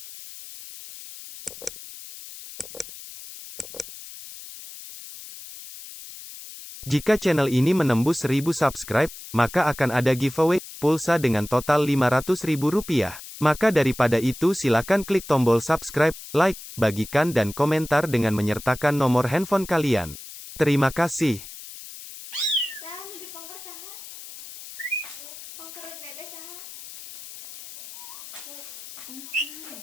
Jika channel ini menembus 1000 subscribe, maka akan ada giveaway pulsa dengan total Rp500.000. Maka daripada itu silakan klik tombol subscribe, like, bagikan dan komentar dengan menyertakan nomor handphone kalian. Terima kasih.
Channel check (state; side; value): noise; left; hiss, 14 dB below the sound